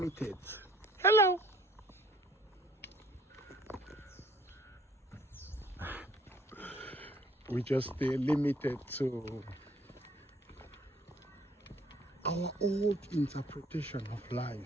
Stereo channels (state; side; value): normal; both; correlation 0.60